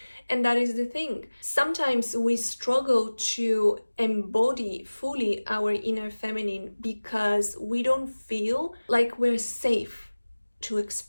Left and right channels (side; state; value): both; inverted; correlation -1.00